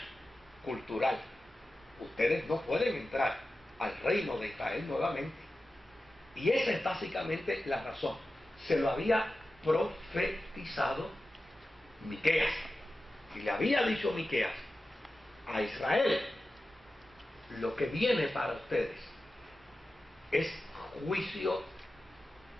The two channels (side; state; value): both; normal; correlation 0.93